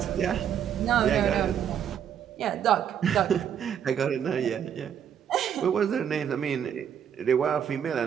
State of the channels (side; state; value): left; quieter; 8.8 dB